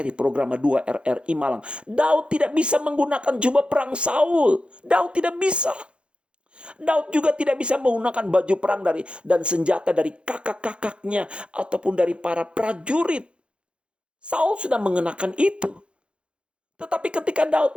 programa 2 RRI Malang, Daud tidak bisa menggunakan jubah perang Saul. Daud tidak bisa. Daud juga tidak bisa menggunakan baju perang dan senjata dari kakak-kakaknya ataupun dari para prajurit. Saul sudah mengenakan itu. Tetapi ketika Daud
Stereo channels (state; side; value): late; left; 0.057 ms